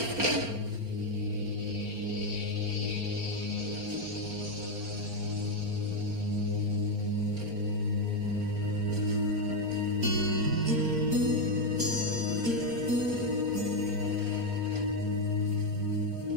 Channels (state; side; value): late; left; 4.4 ms